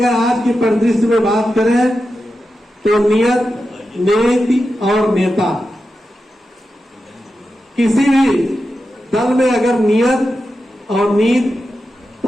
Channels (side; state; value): both; normal; correlation 0.90